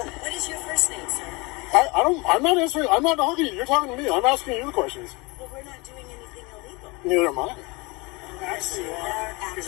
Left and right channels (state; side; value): quieter; right; 26.1 dB